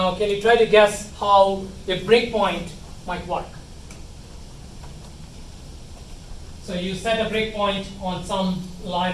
can you try to guess how a breakpoint might work? So you set a breakpoint on some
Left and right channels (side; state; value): both; identical; correlation 1.00